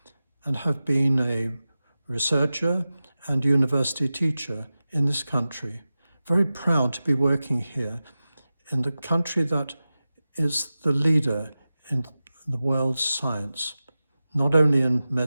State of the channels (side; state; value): both; inverted; correlation -0.95